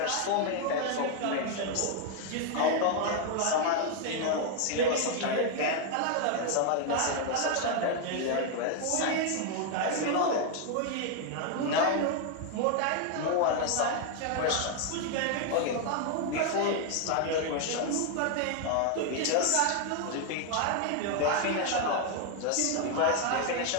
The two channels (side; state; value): both; different; correlation 0.01